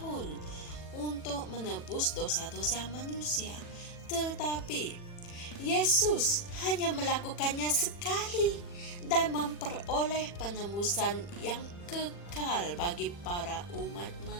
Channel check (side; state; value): right; late; 40 ms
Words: untuk menebus dosa-dosa manusia, tetapi Yesus hanya melakukannya sekali dan memperoleh penebusan yang kekal bagi para umat